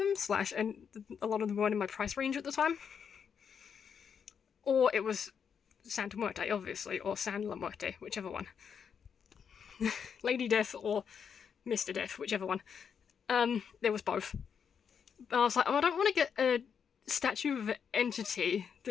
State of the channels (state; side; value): quieter; right; 7.1 dB